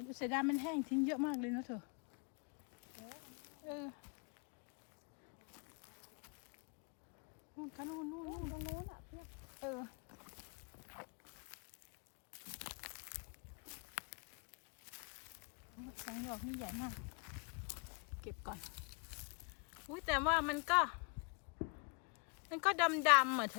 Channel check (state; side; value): quieter; right; 34.7 dB